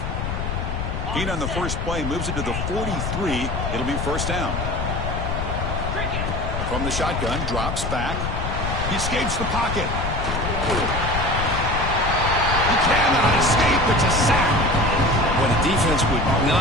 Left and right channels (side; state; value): left; noise; rumble, 3 dB below the sound